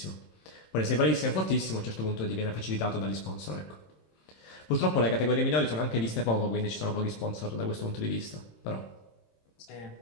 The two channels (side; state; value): right; late; 26 ms